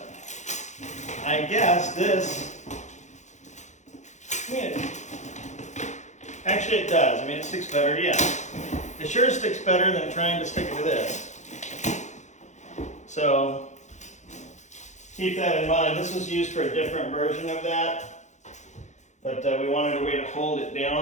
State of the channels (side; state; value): right; late; 0.34 ms